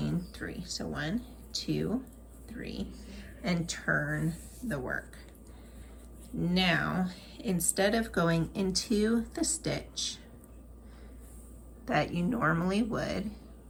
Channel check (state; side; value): identical; both; correlation 1.00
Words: 3. So 1, 2, 3, and turn the work. Now, instead of going into the stitch that you normally would,